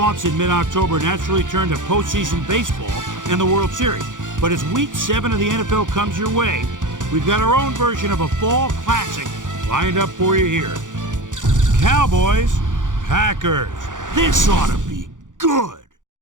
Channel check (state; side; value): late; left; 0.87 ms